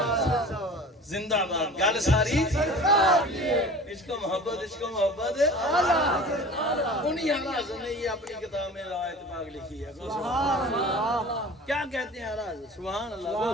زندہ باد گل ساری اس کو محبت انہی حضرت نے یہ اپنی کتاب میں روایت پاک لکھی ہے کیا کہتے ہیں حضرت سبحان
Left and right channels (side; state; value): both; normal; correlation 0.40